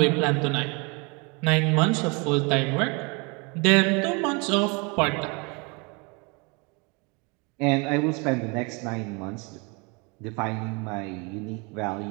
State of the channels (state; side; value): quieter; left; 30.3 dB